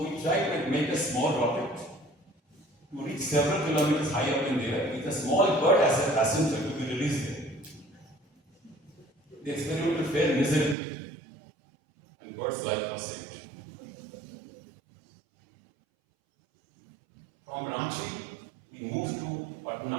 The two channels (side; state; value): left; drops out; at 10.8 s